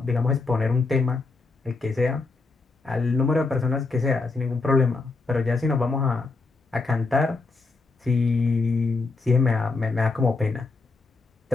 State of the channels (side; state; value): right; quieter; 3.9 dB